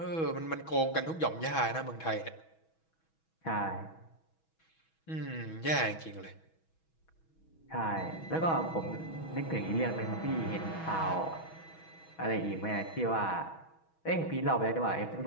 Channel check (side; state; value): right; late; 6.2 ms